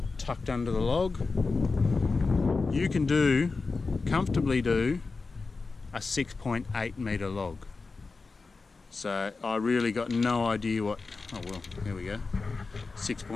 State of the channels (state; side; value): quieter; right; 4.1 dB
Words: tucked under the log, you can comfortably do a 6.8 metre log. So I really got no idea what, oh well, here we go.